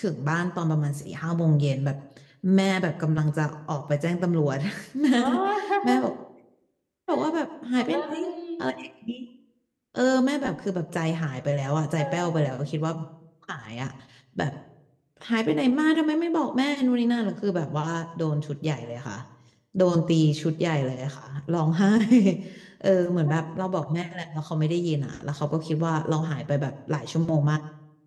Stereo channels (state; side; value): identical; both; correlation 1.00